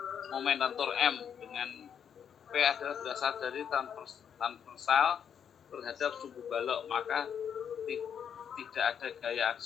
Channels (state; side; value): quieter; right; 8.0 dB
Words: lentur M dengan V adalah berasal dari transversal terhadap sumbu balok, maka tidak ada gaya